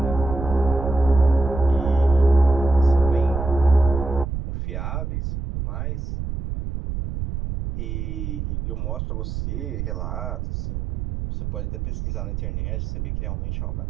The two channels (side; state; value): right; noise; rumble, 4 dB below the sound